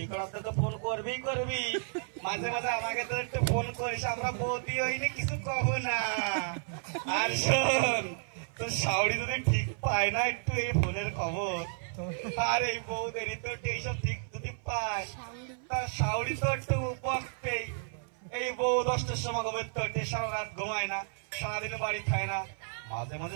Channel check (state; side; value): silent; left; 56 dB below the other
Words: কড়াতে তো ফোন করবি মাঝে মাঝে আমাকে তো একটু ফোন করিস আমরা বৌদি হইনি কিছু কব না আর শোন তোর শাওড়ি যদি ঠিক পায় না একটু এই ফোনের খবর আর এই বৌদেরই তো এইসব ঠিক যদি পায় তার শাওড়ি তো একটু বকবেই এই বউ 10টার সময় ঘুমের তো সারা রাত ঘুমায় না সারাদিন বাড়ি খায় না মাঝে